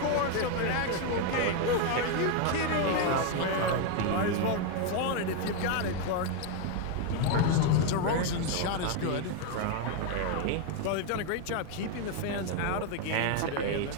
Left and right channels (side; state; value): both; different; correlation 0.01